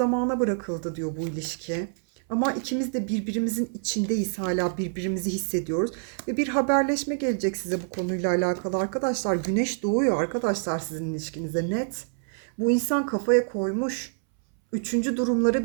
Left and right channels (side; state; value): left; silent; 61 dB below the other